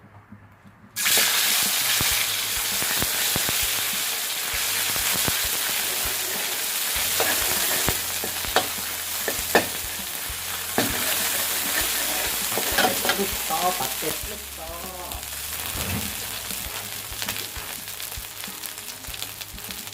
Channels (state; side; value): identical; both; correlation 1.00